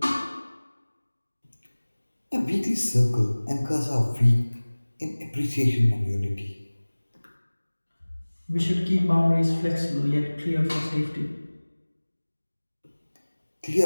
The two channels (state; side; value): inverted; both; correlation -1.00